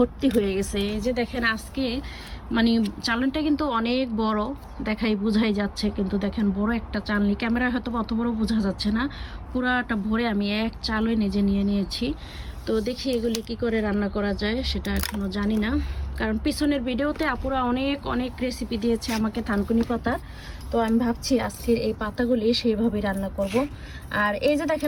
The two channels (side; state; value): both; identical; correlation 1.00